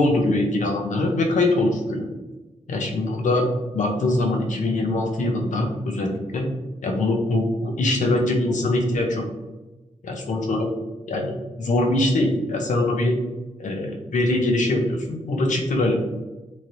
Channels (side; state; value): both; normal; correlation 0.69